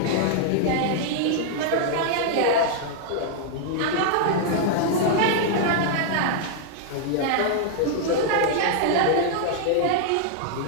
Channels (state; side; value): different; both; correlation -0.01